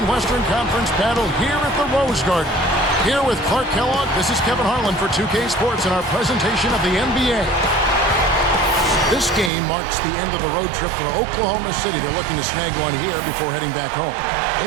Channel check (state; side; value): drops out; left; at 9.5 s